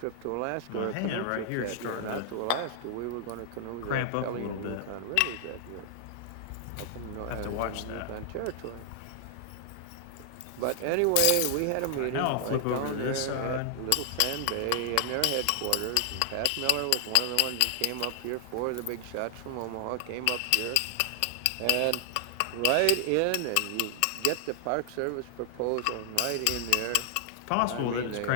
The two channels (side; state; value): both; different; correlation 0.00